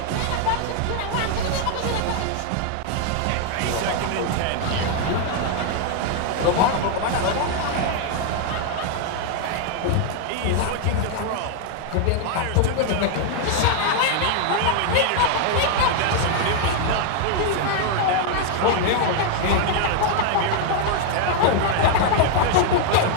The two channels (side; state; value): both; different; correlation 0.00